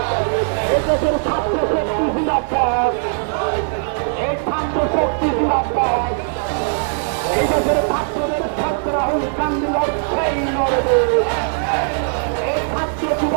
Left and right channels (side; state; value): left; silent; digital silence